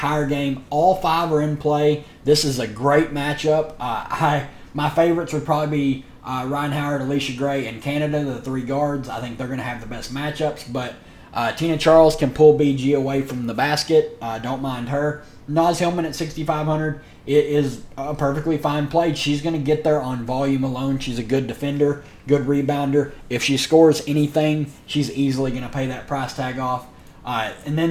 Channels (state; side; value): identical; both; correlation 1.00